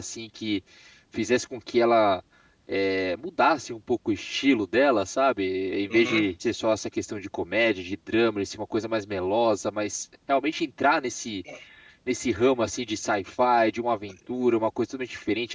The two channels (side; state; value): both; identical; correlation 1.00